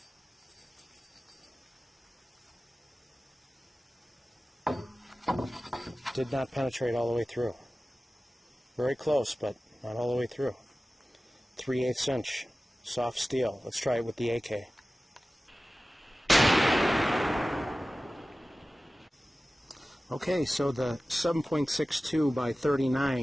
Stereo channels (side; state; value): both; normal; correlation 0.96